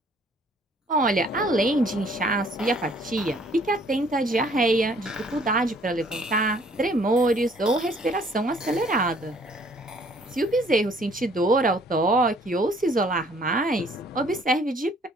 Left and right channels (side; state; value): both; normal; correlation 0.60